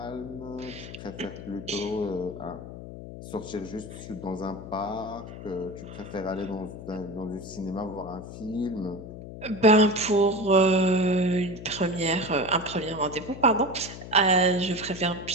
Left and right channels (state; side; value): noise; left; hum, 12 dB below the sound